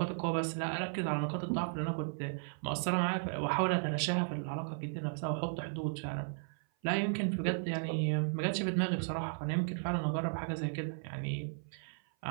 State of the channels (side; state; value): left; silent; 54 dB below the other